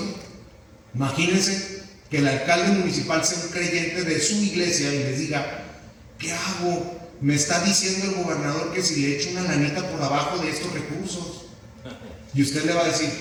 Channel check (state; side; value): identical; both; correlation 1.00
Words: Imagínense que el alcalde municipal sea un creyente de su iglesia y les diga: ¿qué hago? Me está diciendo el gobernador que si le echo una lanita por abajo de estos recursos. Y usted le va a decir: